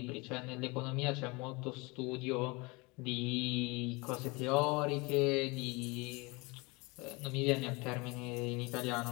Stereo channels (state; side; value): quieter; right; 26.1 dB